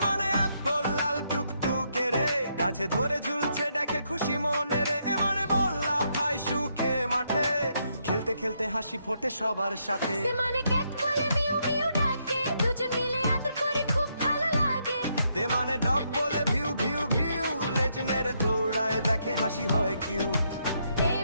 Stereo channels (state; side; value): inverted; both; correlation -0.77